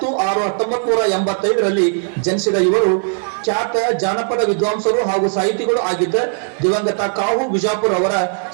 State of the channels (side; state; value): left; silent; 59 dB below the other